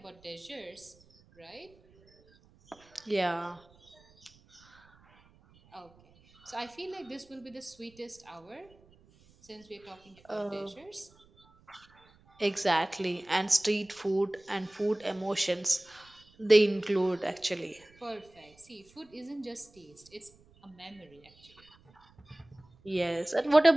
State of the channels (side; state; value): right; noise; rumble, 29 dB below the sound